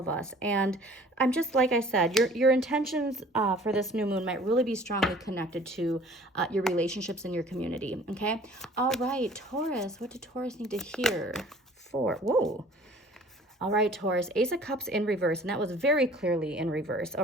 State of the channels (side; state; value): both; normal; correlation 0.50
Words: us. And I'm just, like I said, your intentions for this new moon might really be strongly connected to your relationships in your community. Okay, all right, Taurus. What do Taurus need to hear for? Whoa. All right, Taurus, Ace of Cups in reverse, and that was very clearly in reverse,